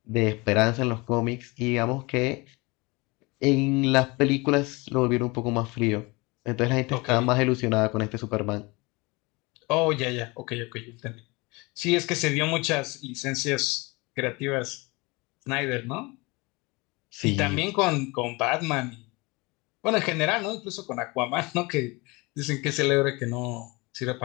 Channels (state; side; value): quieter; right; 25.3 dB